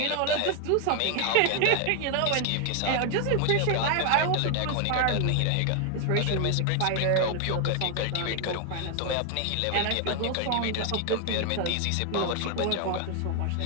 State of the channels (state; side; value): different; both; correlation 0.01